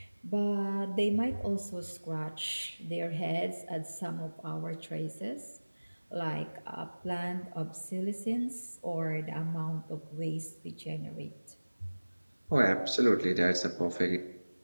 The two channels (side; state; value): both; inverted; correlation -1.00